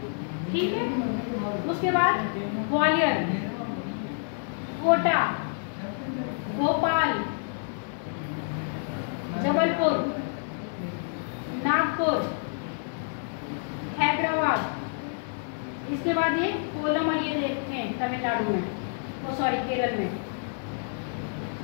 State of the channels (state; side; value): silent; right; digital silence